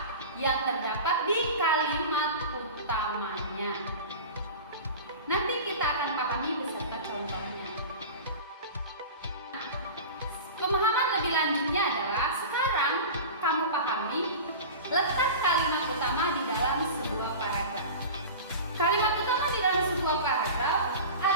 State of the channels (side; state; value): both; inverted; correlation -0.32